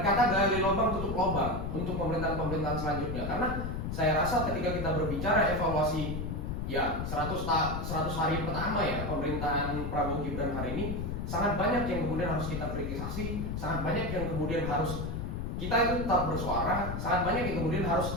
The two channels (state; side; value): noise; left; rumble, 4 dB below the sound